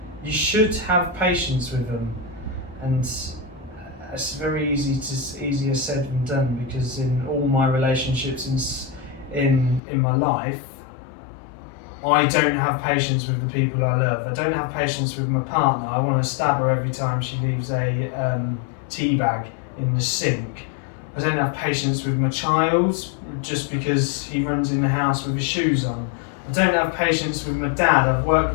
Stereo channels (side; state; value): right; drops out; at 9.8 s